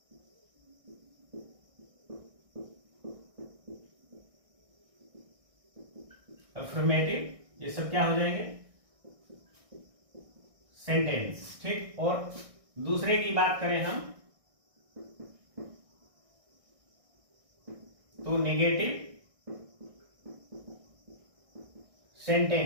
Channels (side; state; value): left; late; 1.6 ms